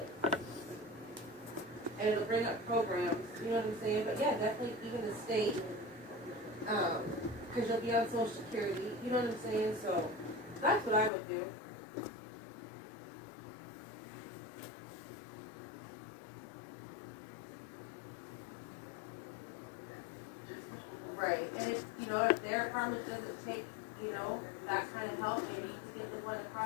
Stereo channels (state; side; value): drops out; right; at 11.1 s